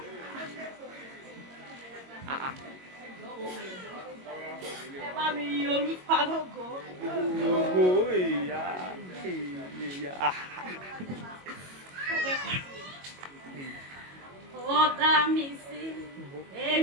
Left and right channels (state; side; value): late; left; 22 ms